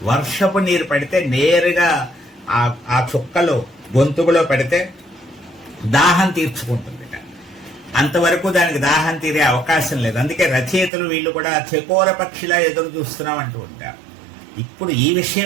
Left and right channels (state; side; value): drops out; left; at 10.9 s